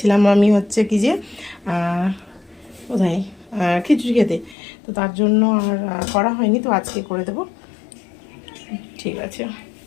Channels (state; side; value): drops out; right; at 4.5 s